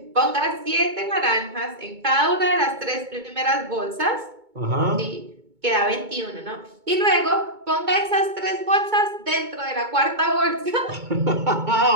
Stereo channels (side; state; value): left; late; 2.2 ms